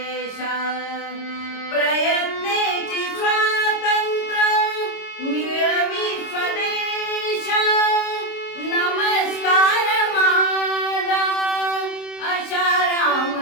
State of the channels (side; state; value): right; late; 26 ms